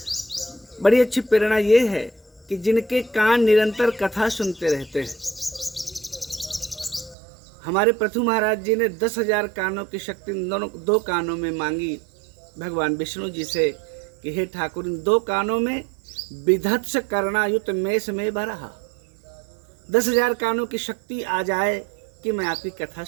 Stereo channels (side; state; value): left; drops out; at 7.2 s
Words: बड़ी अच्छी प्रेरणा ये है कि जिनके कान निरंतर कथा सुनते रहते हैं। हमारे पृथु महाराज जी ने 10,000 कानों की शक्ति दो कानों में मांगी भगवान विष्णु जी से कि हे ठाकुर, इन 2 कानों में विधत्स करणायुत मेष में भरा। 10,000 कानों की शक्ति आ जाए कि मैं आपकी कथा